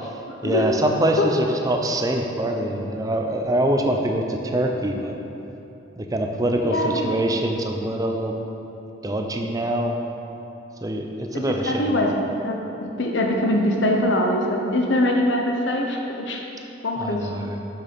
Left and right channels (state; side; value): normal; both; correlation 0.44